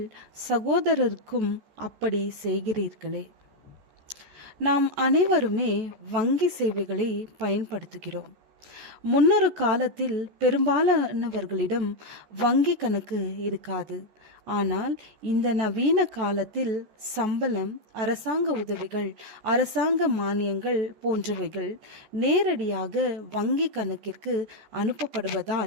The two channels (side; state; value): left; late; 14 ms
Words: சகோதரருக்கும் அப்படி செய்கிறீர்களே. நாம் அனைவருமே வங்கி சேவைகளை பயன்படுத்துகிறோம். முன்னொரு காலத்தில் பெரும்பாலானவர்களிடம் வங்கி கணக்கு இருக்காது. ஆனால் இந்த நவீன காலத்தில் சம்பளம், அரசாங்க உதவிகள், அரசாங்க மானியங்கள் போன்றவைகள் நேரடியாக வங்கி கணக்கிற்கு